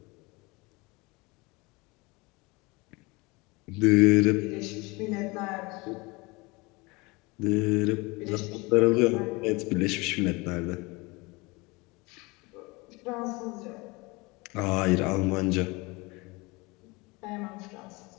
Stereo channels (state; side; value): quieter; right; 25.1 dB